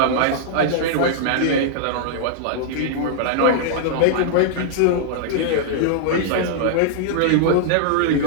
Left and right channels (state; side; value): different; both; correlation -0.01